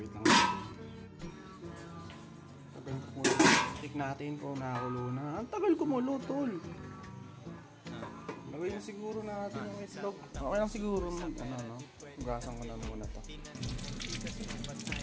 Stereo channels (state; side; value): identical; both; correlation 1.00